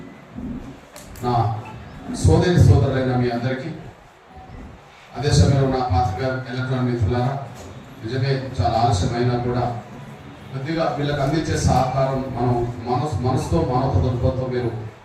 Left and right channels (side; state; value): both; identical; correlation 1.00